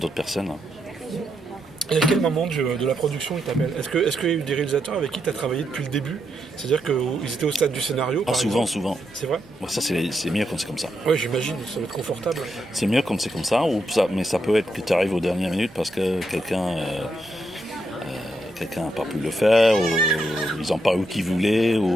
personnes. Et à quel moment de la production ils t'appellent? Est-ce qu'il y a eu des réalisateurs avec qui tu as travaillé depuis le début? C'est-à-dire qu'ils étaient au stade du scénario? Souvent. C'est vrai? Ça, c'est mieux quand c'est comme ça. Oui, j'imagine, ça va être confortable. C'est mieux quand c'est comme ça, mais ça peut être que tu arrives aux dernières minutes parce que quelqu'un n'a pas pu le faire, ou ils n'ont pas eu qu'ils voulaient,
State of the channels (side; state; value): both; normal; correlation 0.81